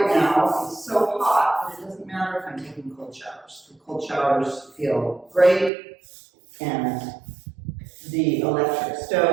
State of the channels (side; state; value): left; drops out; at 5.7 s